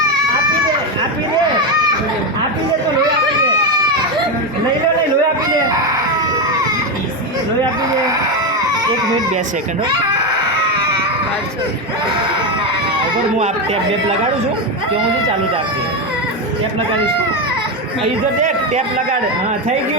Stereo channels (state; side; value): normal; both; correlation 0.11